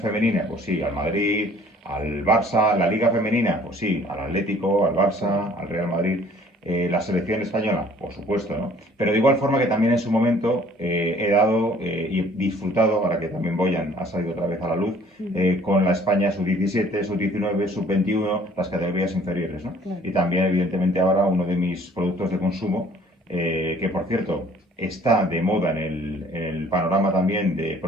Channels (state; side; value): normal; both; correlation 0.55